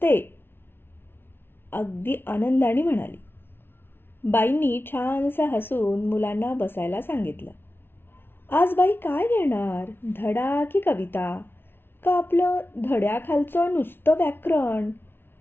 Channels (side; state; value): right; late; 0.11 ms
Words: अगदी आनंदाने म्हणाली. बाईंनी छानसं हसून मुलांना बसायला सांगितलं. आज बाई काय घेणार, धडा की कविता, का आपलं धड्याखालचं नुसतं व्याकरण?